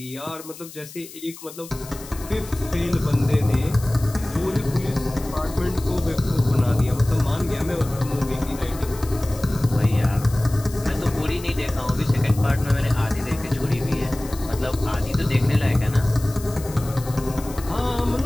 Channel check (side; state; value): left; noise; hiss, 16 dB below the sound